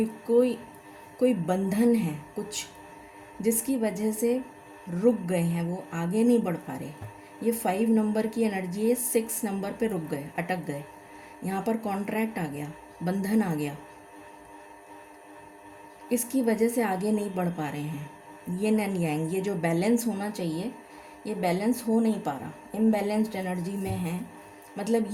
बंधन है कुछ, जिसकी वजह से रुक गए हैं, वो आगे नहीं बढ़ पा रहे। ये 5 नंबर की एनर्जी है, 6 नंबर पे रुक गए, अटक गए। यहाँ पर कॉन्ट्रैक्ट आ गया, बंधन आ गया, इसकी वजह से आगे नहीं बढ़ पा रहे हैं। यिन एंड यांग, ये जो बैलेंस होना चाहिए ये बैलेंस हो नहीं पा रहा, इम्बैलेंस्ड एनर्जी में है, मतलब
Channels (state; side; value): identical; both; correlation 1.00